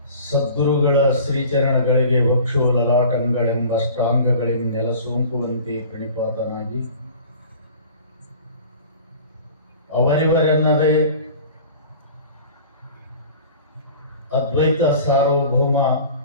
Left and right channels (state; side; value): inverted; both; correlation -0.43